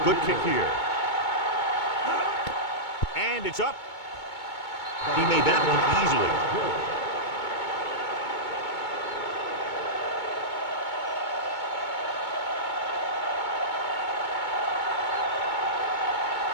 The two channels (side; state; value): right; late; 2.2 ms